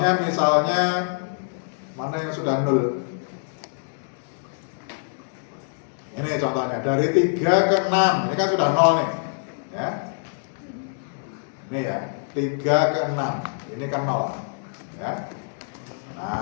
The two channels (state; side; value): silent; right; digital silence